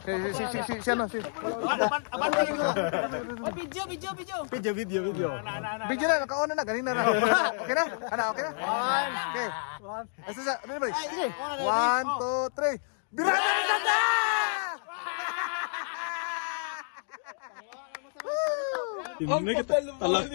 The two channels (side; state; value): right; silent; digital silence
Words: ano si video na naka-on na ganina na. Okay na? Okay na? Okay. Asa sa ano ba? Sige. 1 2 3. Birada na!